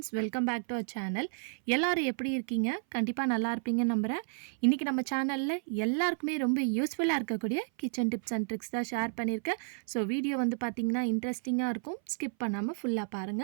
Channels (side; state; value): left; silent; 57 dB below the other